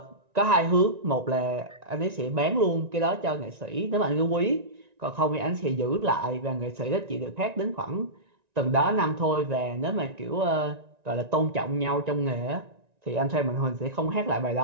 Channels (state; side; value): late; left; 1.9 ms